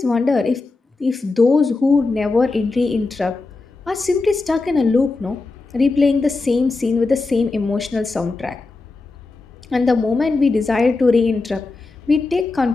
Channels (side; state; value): right; quieter; 3.6 dB